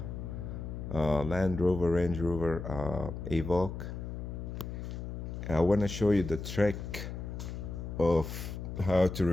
Land Rover Range Rover Evoque. I want to show you the trick of how to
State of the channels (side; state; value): left; noise; hum, 7 dB below the sound